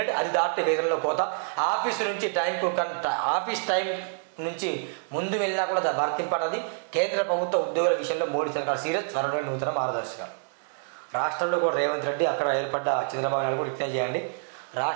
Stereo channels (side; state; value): left; silent; digital silence